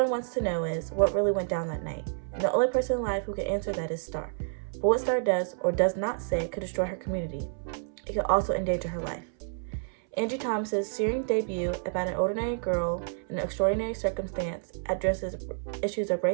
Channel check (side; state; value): left; silent; 58 dB below the other